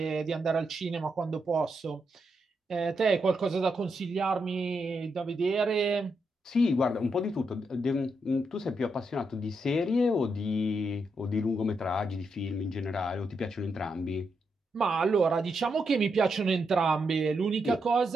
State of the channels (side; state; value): both; normal; correlation 0.82